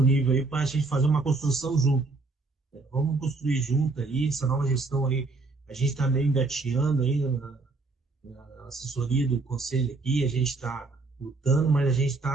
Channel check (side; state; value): left; quieter; 3.5 dB